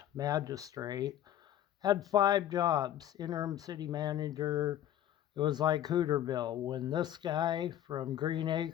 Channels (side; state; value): right; quieter; 11.6 dB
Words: magistrate, had 5 jobs: interim city manager. It was like Hooterville. When this guy from Green